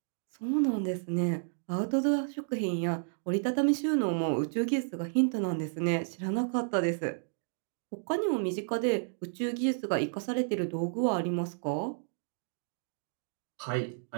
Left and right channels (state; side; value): silent; left; digital silence